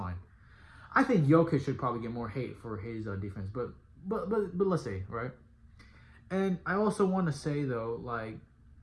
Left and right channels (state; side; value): identical; both; correlation 1.00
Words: I think Jokic should probably get more hate for his defense, but let's say, right? And I also want to say though, like